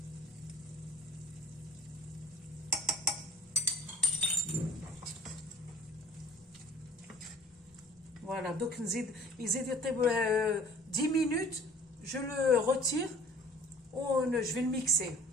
Voilà, donc il يزيد 10 minutes, je le retire, je vais le mixer.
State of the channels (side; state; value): both; normal; correlation 0.50